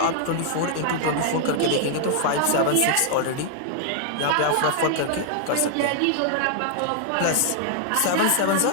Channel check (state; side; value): different; both; correlation -0.01